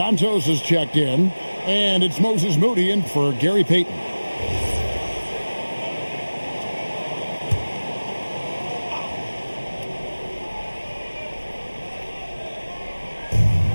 is checked in. And it's Moses Moody in for Gary Payton.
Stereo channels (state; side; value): inverted; both; correlation -1.00